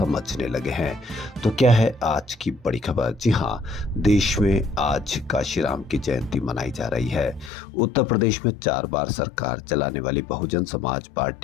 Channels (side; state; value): right; drops out; at 7.5 s